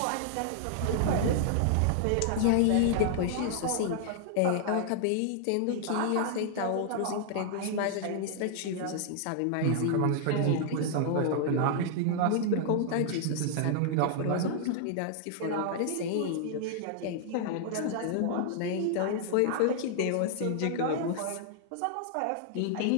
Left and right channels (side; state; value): both; different; correlation 0.00